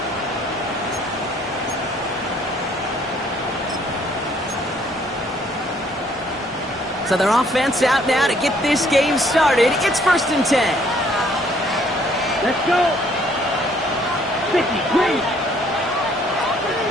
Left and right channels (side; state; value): both; normal; correlation 0.63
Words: So their offense out now to get this game started. It's 1st and 10. Let's go. 50, green.